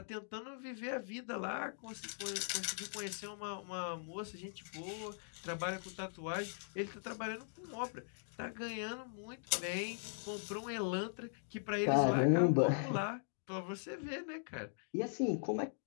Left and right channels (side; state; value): right; silent; digital silence